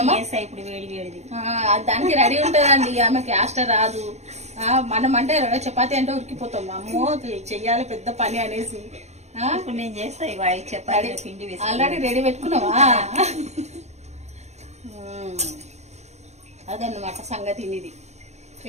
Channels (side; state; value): left; late; 0.32 ms